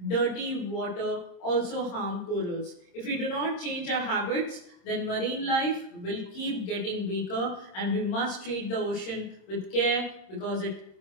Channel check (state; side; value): late; right; 26 ms